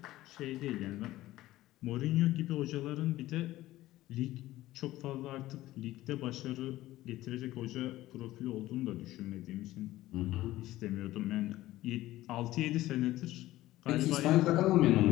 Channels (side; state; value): right; quieter; 16.0 dB